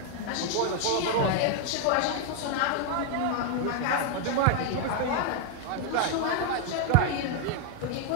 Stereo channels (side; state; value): both; different; correlation 0.00